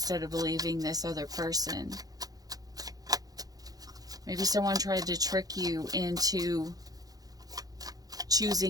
of believing this other person. Maybe someone tried to trick you into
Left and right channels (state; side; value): late; left; 0.18 ms